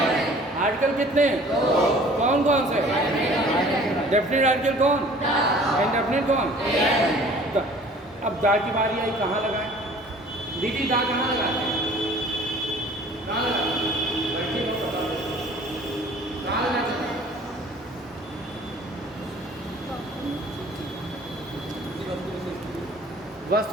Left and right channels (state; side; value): normal; both; correlation 0.50